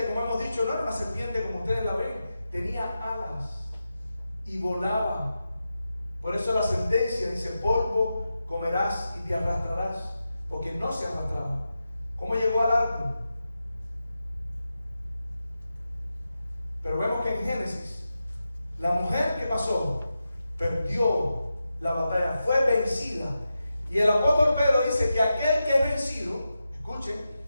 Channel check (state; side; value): inverted; both; correlation -0.90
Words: como hemos dicho, no era una serpiente como ustedes la ven, tenía alas y volaba. Por eso la sentencia dice: polvo comerás y te arrastrarás, porque no se arrastraba. ¿Cómo llegó al árbol? Pero vemos que en Génesis, la mujer que pasó perdió la batalla, fue vencida. Y el apóstol Pedro dice que aquel que es vencido, escuchen,